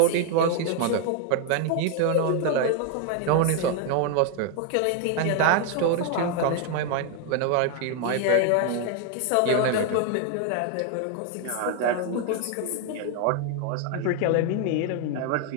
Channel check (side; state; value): both; different; correlation 0.01